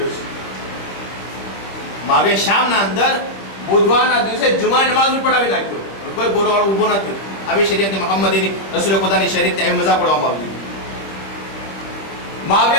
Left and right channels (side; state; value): right; late; 25 ms